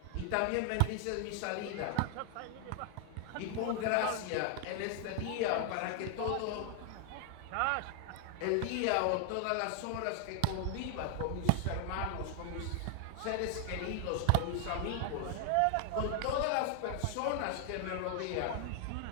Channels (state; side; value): different; both; correlation 0.00